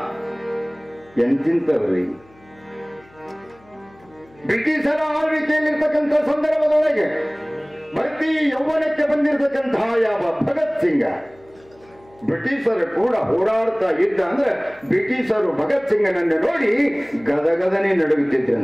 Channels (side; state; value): left; noise; hum, 28 dB below the sound